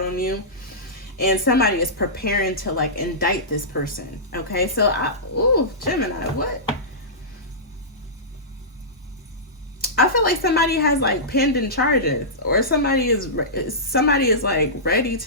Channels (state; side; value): normal; both; correlation -0.17